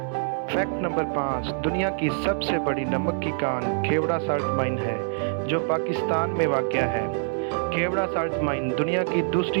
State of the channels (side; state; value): left; silent; digital silence